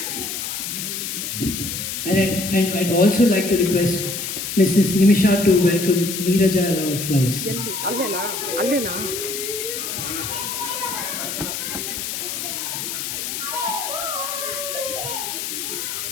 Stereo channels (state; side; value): noise; left; hiss, 4 dB below the sound